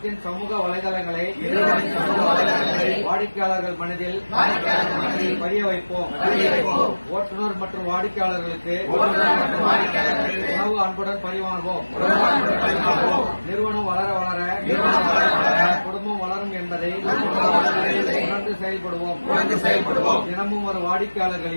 சமூக வலைதளங்களை வாடிக்கையாளர்கள் மனதில் பதிய வைப்போம். ஓட்டுநர் மற்றும் வாடிக்கையாளர்களுக்கு உணவு அன்புடன் பரிமாறுவோம். நிறுவனம் வளர வளர குடும்பம் வளரும் என்பதை உணர்ந்து செயல்படுவோம். தினமும் ஒரு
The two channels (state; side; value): inverted; both; correlation -1.00